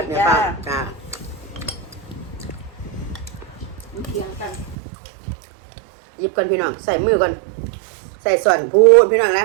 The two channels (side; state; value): left; drops out; at 4.8 s